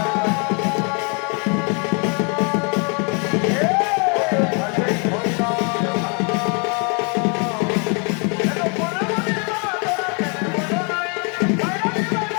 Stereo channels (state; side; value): quieter; right; 35.3 dB